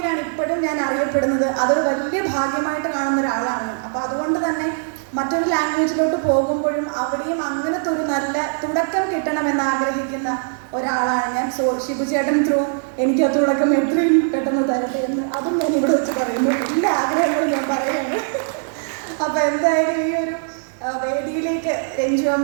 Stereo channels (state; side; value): silent; left; digital silence